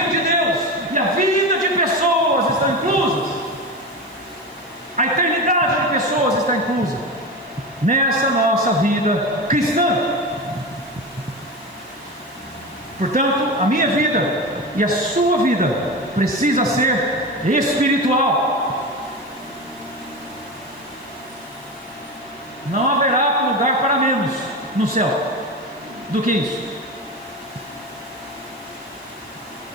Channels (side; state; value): left; noise; hiss, 29 dB below the sound